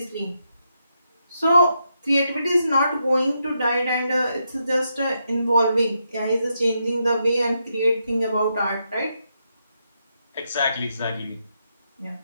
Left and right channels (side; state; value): both; inverted; correlation -0.82